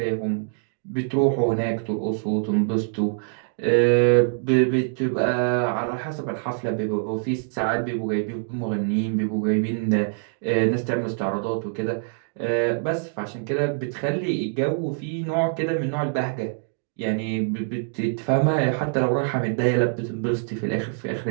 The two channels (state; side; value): silent; left; 62 dB below the other